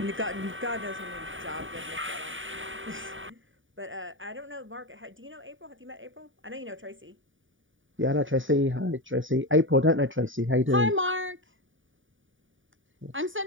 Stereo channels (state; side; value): late; left; 0.57 ms